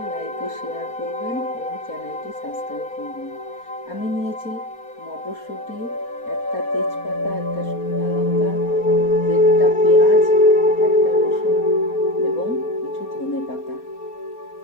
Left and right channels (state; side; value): late; right; 4.2 ms